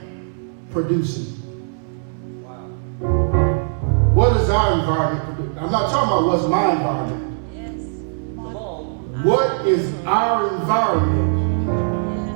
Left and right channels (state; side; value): silent; left; 65 dB below the other